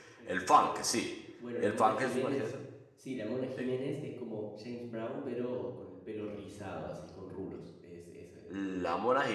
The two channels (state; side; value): identical; both; correlation 1.00